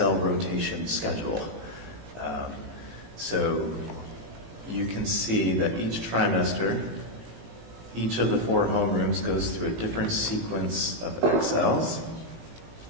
rotation schedule. So you can see that each trimester, each of the 4 homerooms goes through a different sequence of XLs.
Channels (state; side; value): late; left; 18 ms